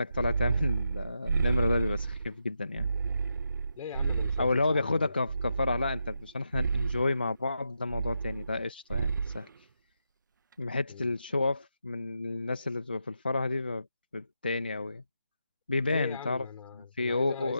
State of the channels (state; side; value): inverted; both; correlation -0.84